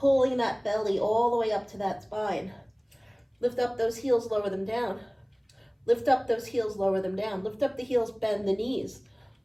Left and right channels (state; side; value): identical; both; correlation 1.00